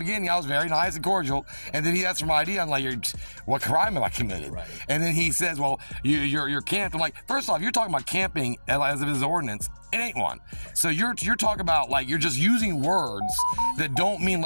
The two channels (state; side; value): inverted; both; correlation -1.00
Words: beginning, I was very nice and cordial, and then he asked for my ID. I'm like, what crime have I committed? Right. And then he says, well, you're camped. I'm like, first off, you're talking about camping as if it's an ordinance. It ain't one. So you're talking about, like, you're just using words that don't mean